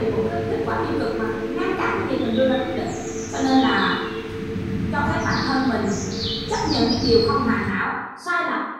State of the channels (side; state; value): both; identical; correlation 1.00